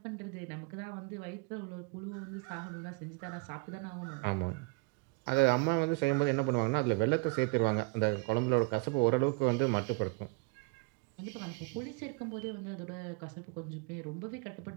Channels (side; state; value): left; quieter; 29.4 dB